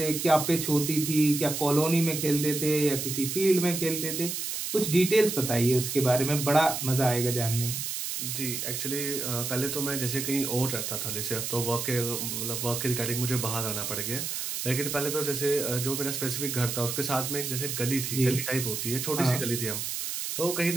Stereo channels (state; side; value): noise; right; hiss, 3 dB below the sound